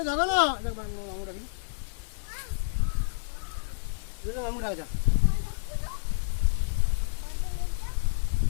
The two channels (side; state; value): right; silent; digital silence